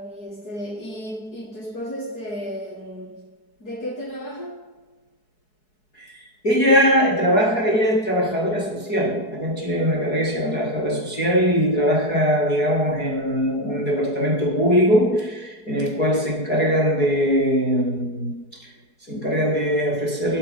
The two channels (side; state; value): right; late; 4.7 ms